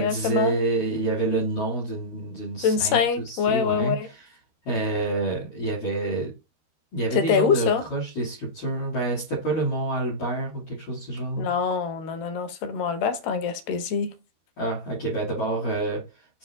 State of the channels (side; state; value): right; late; 13 ms